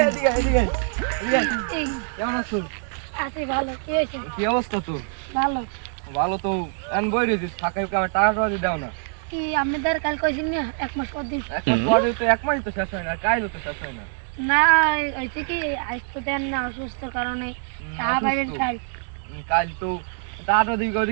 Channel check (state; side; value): silent; left; 55 dB below the other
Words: এদিকে এদিকে এদিকে কেমন আছো? আছি ভালো। কি হয়েছে? কি অবস্থা তোর? ভালো। ভালো তো এন বই রইছিস ফাঁকা আমার টাকা টাকা দাও না। কি আপনাদের কাল কইছেন না 1 মাস পর দিন? এক মাস পরে তো এক মাসই তো শেষ হয় না কাইলো তো শেষ হয় না। না হইছে কি আজ তো দেন না অসুস্থর কারণে টাকা পাইবেন কাল। কাল তো টাকা দিই